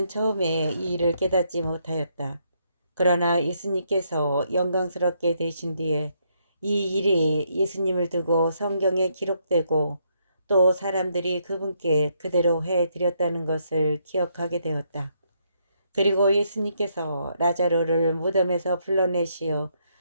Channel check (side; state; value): both; inverted; correlation -0.75